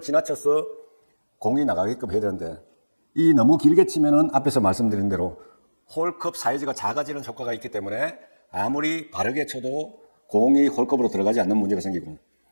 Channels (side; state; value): both; inverted; correlation -1.00